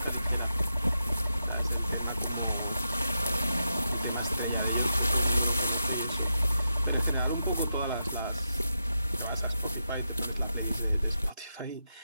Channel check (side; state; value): both; inverted; correlation -0.87